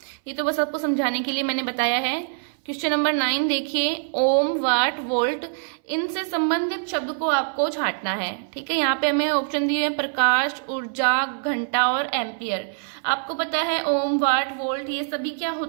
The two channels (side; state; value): left; silent; 61 dB below the other